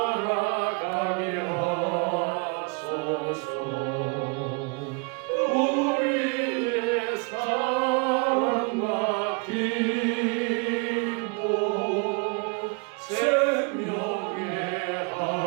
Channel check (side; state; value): left; quieter; 32.9 dB